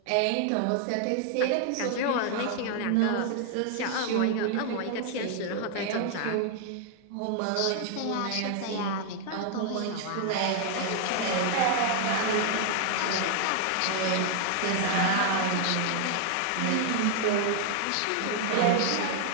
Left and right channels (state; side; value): different; both; correlation 0.00